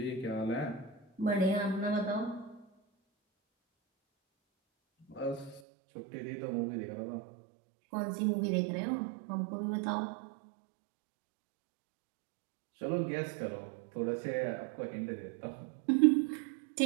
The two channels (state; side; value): drops out; left; at 5.6 s